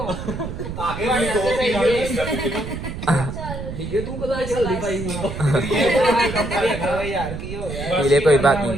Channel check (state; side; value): noise; right; rumble, 7 dB below the sound